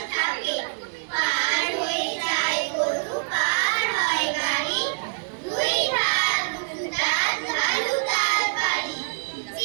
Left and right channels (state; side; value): silent; left; digital silence